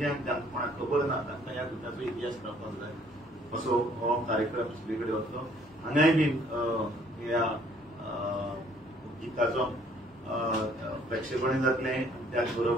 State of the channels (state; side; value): normal; both; correlation 0.61